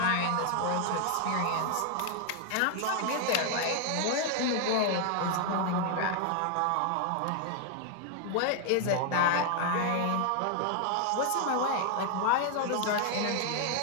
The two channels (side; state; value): both; different; correlation 0.00